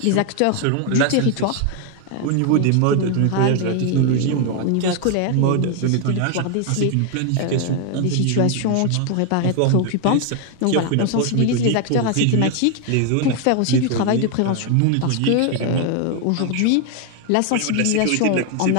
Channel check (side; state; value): both; different; correlation 0.01